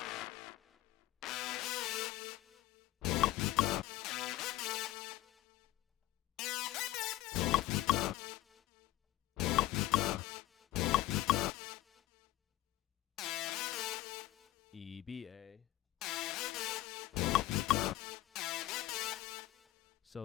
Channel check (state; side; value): quieter; right; 15.9 dB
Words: E, B, A.